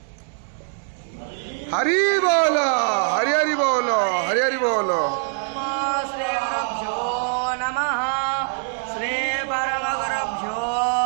हरि बोलो हरि हरि बोलो हरि हरि बोलो। श्री गुरुभ्यो नमः श्री परम गुरुभ्यो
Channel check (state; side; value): silent; left; 63 dB below the other